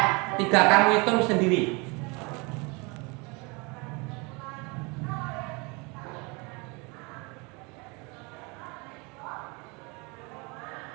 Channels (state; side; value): quieter; left; 28.9 dB